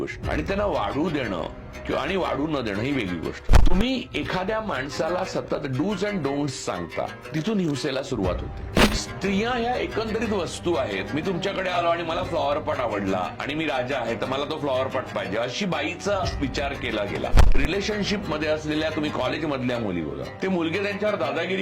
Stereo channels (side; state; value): both; identical; correlation 1.00